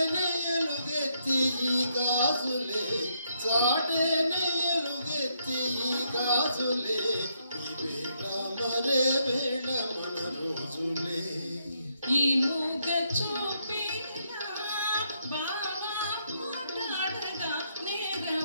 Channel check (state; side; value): inverted; both; correlation -0.76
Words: ఎలుగెత్తి ఈ గాజులే, చాటేనే ఎలుగెత్తి ఈ గాజులే, ఈ వేళ మరే వేళ మన రోజులే. ఈ మూగ చూపేనా బావా మాట్లాడగా